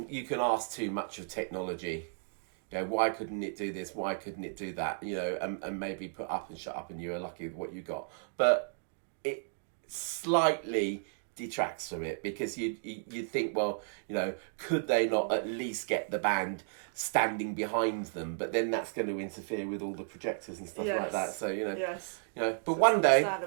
ask too much of technology. You know, why couldn't it do this? Why couldn't it do that? You know, and maybe put up and shut up, and you are lucky with what you got. But it slightly detracts from it, because you think, well, you know, could they not at least get the band standing behind them? But then that's going to interfere with all the projectors and stuff like that. So you know, you know. But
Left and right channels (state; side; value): silent; left; digital silence